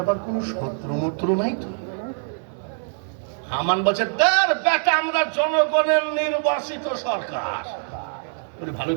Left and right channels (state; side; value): silent; left; 63 dB below the other